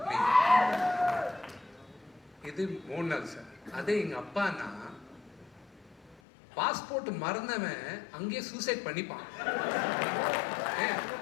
me. இது மோகன்லால் சார். அதே எங்கள் அப்பானா பாஸ்போர்ட் மறந்தவன் அங்கேயே சூசைட் பண்ணிப்பான்.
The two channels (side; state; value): right; drops out; at 6.2 s